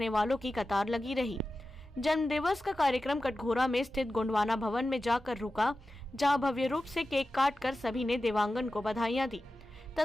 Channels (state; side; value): normal; both; correlation 0.94